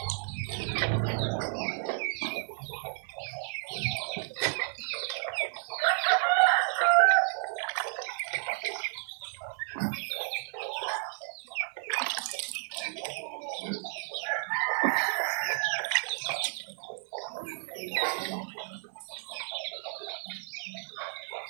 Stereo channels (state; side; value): silent; left; 56 dB below the other